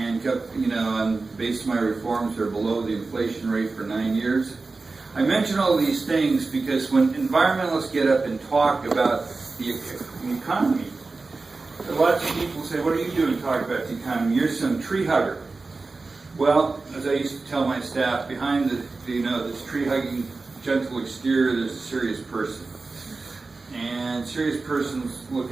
kept, based on my reforms, they're below the inflation rate for 9 years. I mention all these things because when environmentalists get up and talk about the economy, lots of people say, what are you doing talking about the economy? You're some tree hugger. Well, as I used to tell my staff, behind this tree-hugging gentle exterior, there's a serious person. And serious persons look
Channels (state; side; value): quieter; left; 3.8 dB